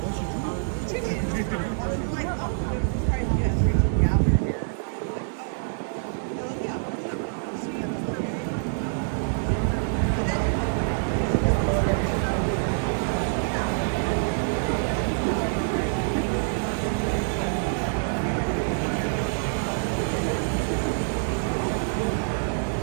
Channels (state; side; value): silent; left; digital silence